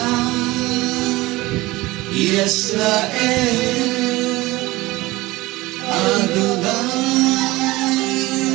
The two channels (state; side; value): quieter; left; 19.8 dB